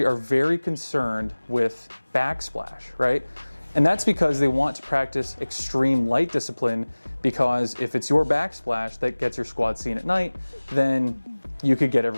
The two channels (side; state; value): both; inverted; correlation -1.00